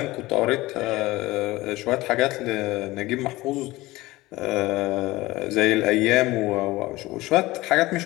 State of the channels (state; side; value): quieter; right; 19.2 dB